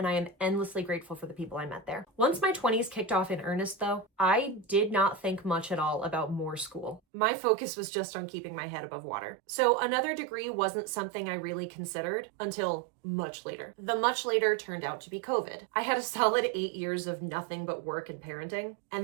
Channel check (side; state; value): left; drops out; at 7.0 s